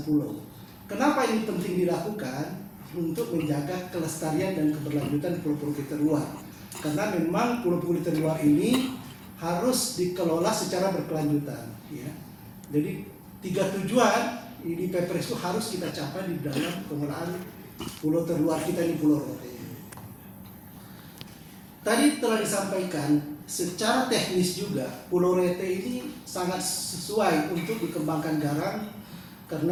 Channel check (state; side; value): identical; both; correlation 1.00